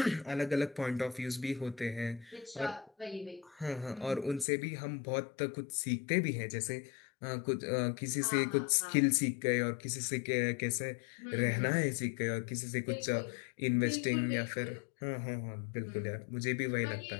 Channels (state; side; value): drops out; right; at 4.5 s